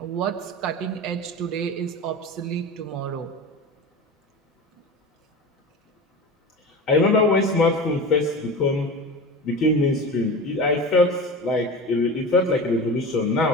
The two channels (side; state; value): both; normal; correlation 0.30